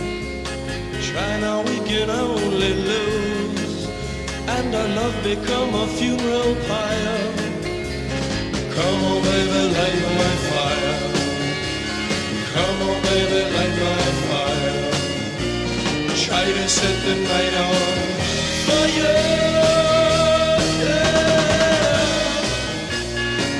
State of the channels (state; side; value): identical; both; correlation 1.00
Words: Try now, we can only lose, and our love become a funeral pyre. Come on, baby, light my fire. Come on, baby, light my fire. Try to set the night on fire.